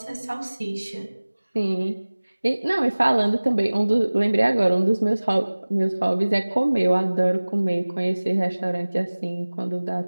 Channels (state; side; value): inverted; both; correlation -1.00